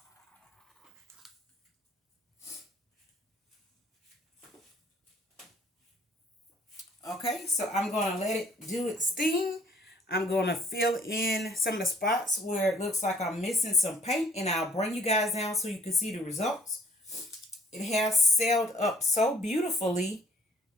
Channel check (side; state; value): both; normal; correlation 0.60